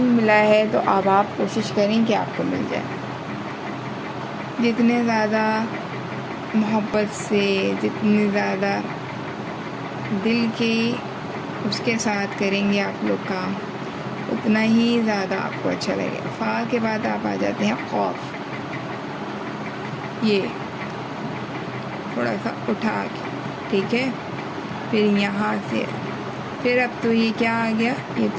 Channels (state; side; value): identical; both; correlation 1.00